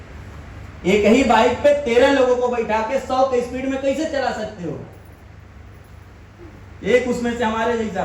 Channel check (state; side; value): identical; both; correlation 1.00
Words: एक ही बाइक पे 13 लोगों को बैठा के 100 के स्पीड में कैसे चला सकते हो? एक उसमें से हमारे जैसा